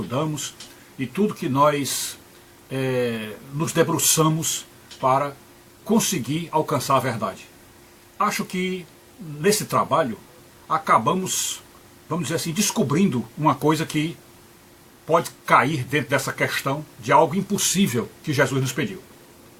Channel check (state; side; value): identical; both; correlation 1.00